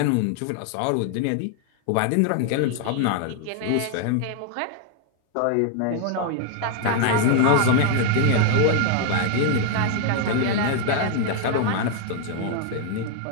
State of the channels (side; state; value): both; different; correlation 0.00